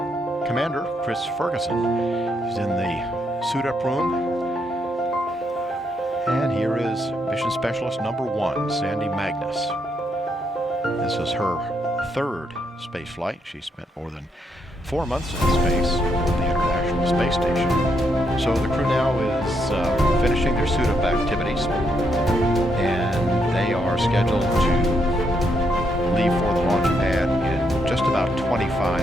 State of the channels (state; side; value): normal; both; correlation 0.77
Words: commander, Chris Ferguson. He's in the suit-up room. And here is Mission Specialist number 1, Sandy Magnus. This is her third space flight. She spent more than 4 months in space at the International Space Station. So the crew now is finishing their suit-up activities, and they are scheduled to leave for the launch pad in just about